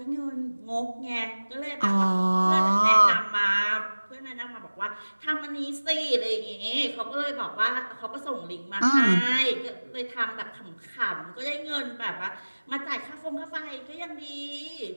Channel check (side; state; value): both; inverted; correlation -1.00